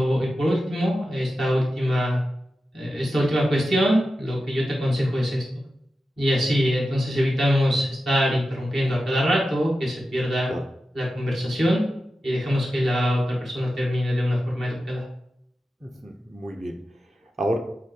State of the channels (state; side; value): normal; both; correlation 0.92